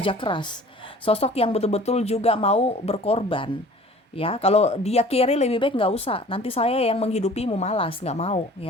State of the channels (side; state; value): both; normal; correlation 0.47